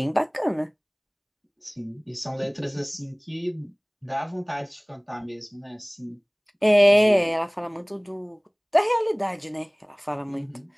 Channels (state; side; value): identical; both; correlation 1.00